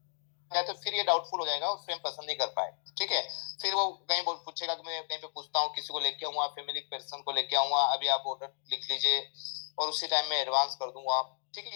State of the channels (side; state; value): right; silent; digital silence